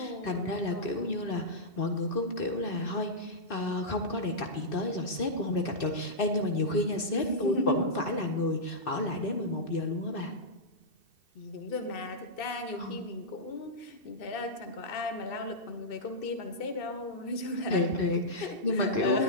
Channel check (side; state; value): right; late; 2.7 ms